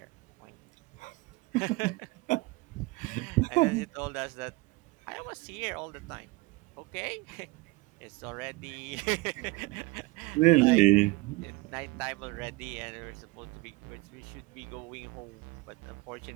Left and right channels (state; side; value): quieter; left; 23.3 dB